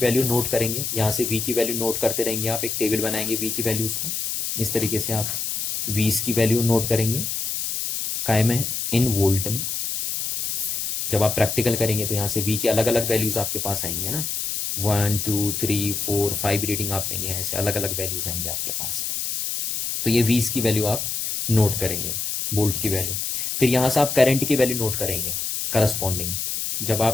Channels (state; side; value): noise; left; hiss, 2 dB below the sound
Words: नोट करेंगे, यहाँ से V की वैल्यू नोट करते रहेंगे, आप एक टेबल बनाएंगे V की वैल्यूज को, इस तरीके से आप V's की वैल्यू नोट करेंगे, काय में, इन वोल्ट में। जब आप प्रैक्टिकल करेंगे तो यहाँ से V की अलग अलग वैल्यूज आपके पास आएंगे ना, 1 2 3 4 5 रीडिंग आप लेंगे, ऐसे अलग अलग वैल्यूज आएंगे आपके पास। तो ये V's की वैल्यू आप नोट करेंगे, वोल्ट की वैल्यू। फिर यहाँ से आप करंट की वैल्यू नोट करेंगे करस्पॉन्डिंग। जब